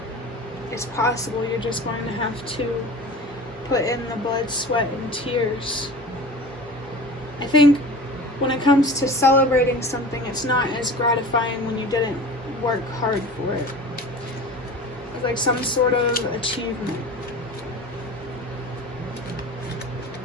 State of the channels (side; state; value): both; normal; correlation 0.36